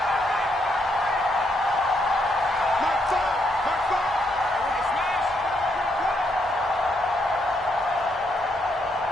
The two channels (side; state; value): both; normal; correlation 0.76